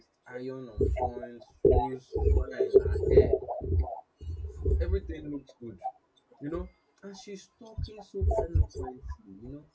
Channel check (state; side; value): identical; both; correlation 1.00